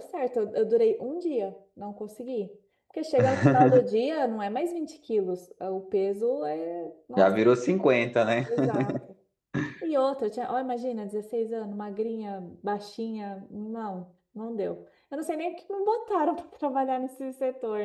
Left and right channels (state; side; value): identical; both; correlation 1.00